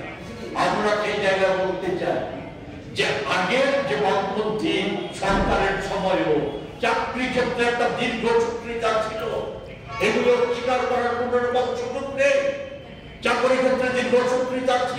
আমরা সেই জায়গায় বলতে চাই যে আগের যে বামপন্থী সরকারের সময়ও চাকরি ক্ষেত্রে একটা দীর্ঘ সূত্রিতা ছিল, এগুলো স্বীকার করার কোন রকম সুযোগ নেই। চাকরি ক্ষেত্রে দীর্ঘ সূত্রিতা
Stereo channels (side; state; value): both; identical; correlation 1.00